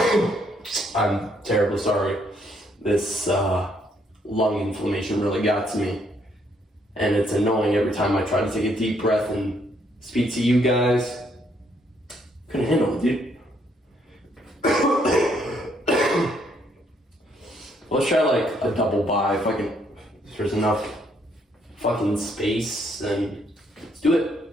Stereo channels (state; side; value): normal; both; correlation 0.71